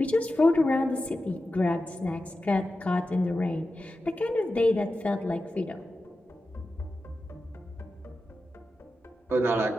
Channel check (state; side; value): normal; both; correlation 0.92